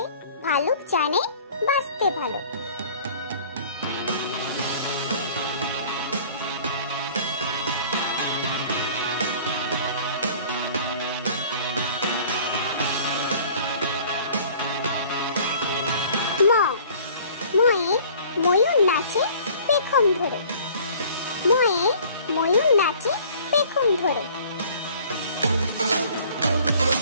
ভালুক জানে বাঁচতে ভালো। ম ময়ে ময়ূর নাচে পেখম ধরে। ময়ে ময়ূর নাচে পেখম ধরে।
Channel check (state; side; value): inverted; both; correlation -0.50